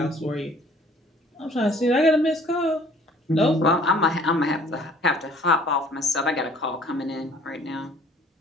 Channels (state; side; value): normal; both; correlation 0.55